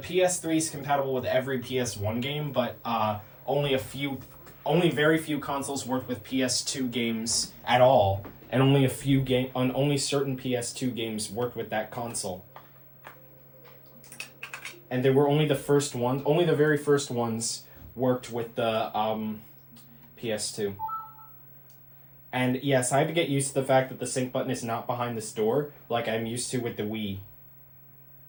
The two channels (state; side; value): identical; both; correlation 1.00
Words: is compatible with every PS1 game, but only very few consoles work with PS2 games at all, and only certain PS2 games worked with that console. And they were only the very first ones worked with the PS2. And yes, I had to get used to the fact that the sync button is not behind this door, like I'm used to with the Wii.